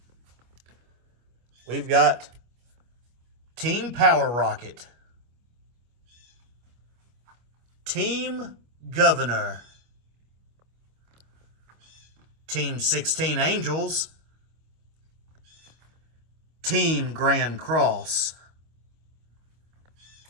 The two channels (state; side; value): late; left; 25 ms